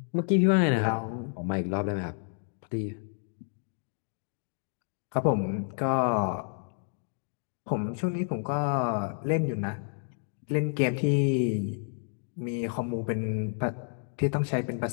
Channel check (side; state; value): right; silent; 58 dB below the other